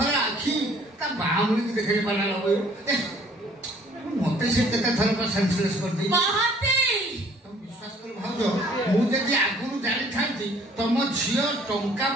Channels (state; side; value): normal; both; correlation 0.57